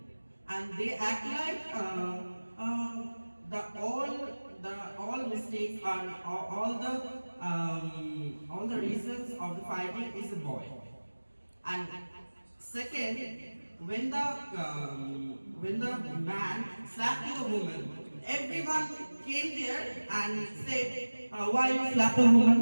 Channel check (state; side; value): inverted; both; correlation -1.00